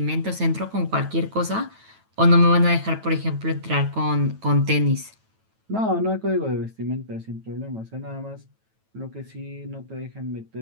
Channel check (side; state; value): left; late; 9.2 ms